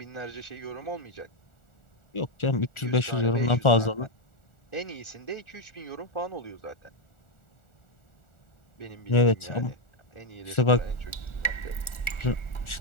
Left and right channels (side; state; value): right; late; 1.4 ms